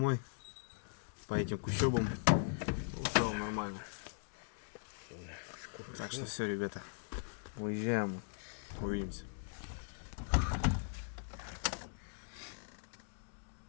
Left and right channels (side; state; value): right; silent; digital silence